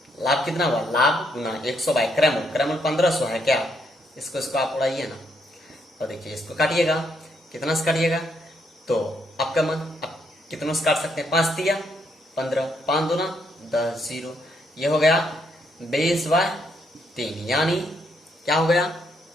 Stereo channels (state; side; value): normal; both; correlation 0.74